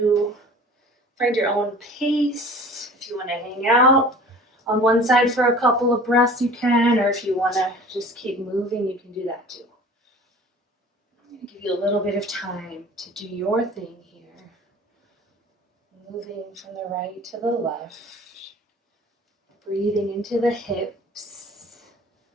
find your own pace. If you want to hang out on one side for a couple of breaths, you can, or if you want to just keep moving, you can do that too. I'm going to give you a little bit of time to do your thing here. Moving from the right to the left, breathing into the hips,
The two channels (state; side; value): normal; both; correlation 0.44